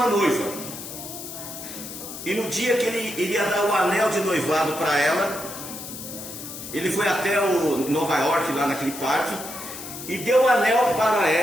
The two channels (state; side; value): noise; left; hiss, 10 dB below the sound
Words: noiva. E no dia que ele iria dar o anel de noivado para ela, ele foi até Nova York, lá naquele parque, e deu o anel para